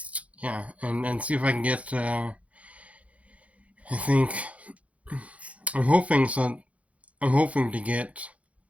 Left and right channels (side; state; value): left; late; 0.065 ms